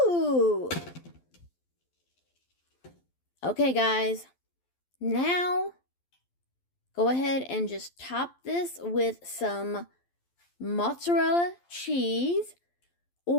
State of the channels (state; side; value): late; right; 12 ms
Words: Okay, guys. Now, go ahead and just top this with some mozzarella cheese,